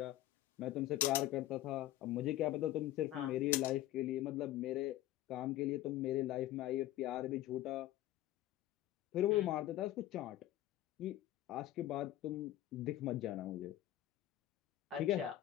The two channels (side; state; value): right; quieter; 14.3 dB